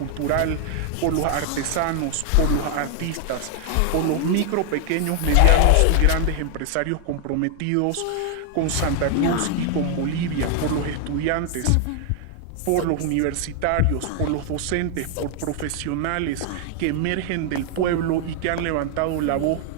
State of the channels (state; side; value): different; both; correlation 0.00